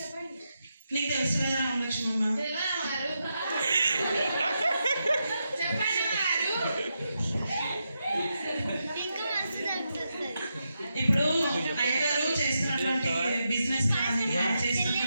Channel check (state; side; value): inverted; both; correlation -0.85